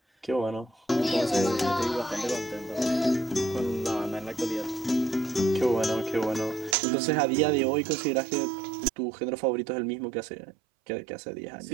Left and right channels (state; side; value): drops out; left; at 6.8 s